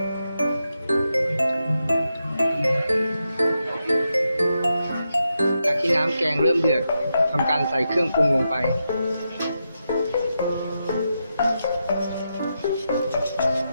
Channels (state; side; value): inverted; both; correlation -0.86